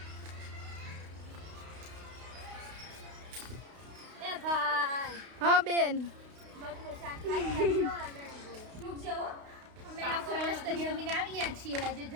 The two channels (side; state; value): left; late; 32 ms